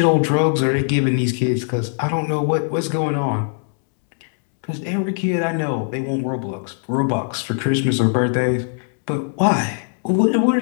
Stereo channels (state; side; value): silent; right; 66 dB below the other